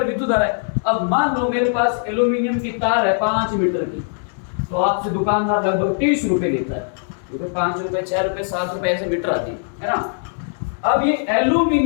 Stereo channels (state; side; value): silent; right; digital silence